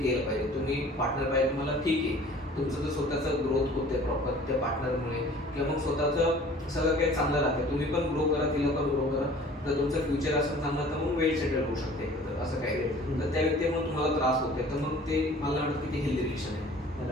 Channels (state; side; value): normal; both; correlation 0.48